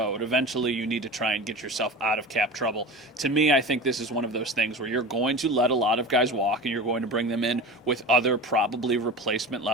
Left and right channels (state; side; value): normal; both; correlation 0.32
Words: Eventually, you need to try and get yourself out of cap trouble. To me, I think this is one of those things where you're going to let a lot of guys walk, and you're going to bring them in with other probably